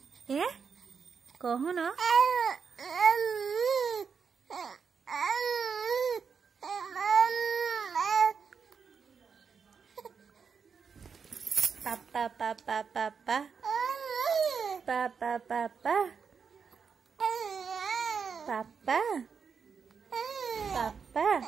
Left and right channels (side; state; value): left; quieter; 6.0 dB